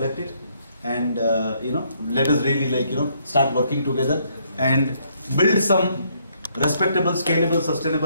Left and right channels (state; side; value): inverted; both; correlation -0.70